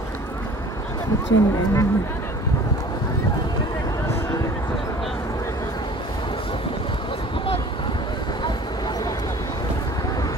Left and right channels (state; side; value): normal; both; correlation 0.47